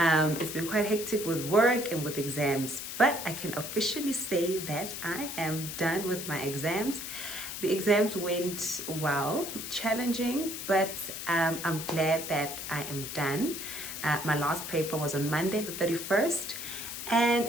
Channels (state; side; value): noise; left; hiss, 7 dB below the sound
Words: been quite hectic with work and with exams, but I can officially say that I am done with my exams. The exams went well, challenging, but I'm glad that I am done. My last paper was on Monday, the 31st. And